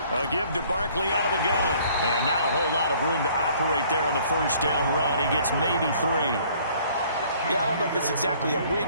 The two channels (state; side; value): inverted; both; correlation -0.58